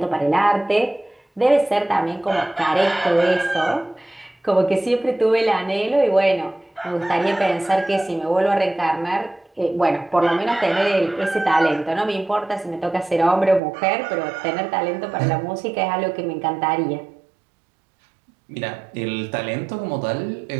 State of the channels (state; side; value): drops out; left; at 13.6 s